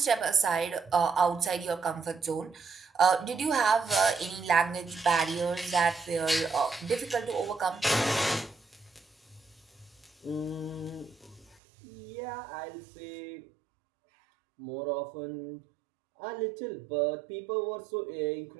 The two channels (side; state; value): left; drops out; at 11.6 s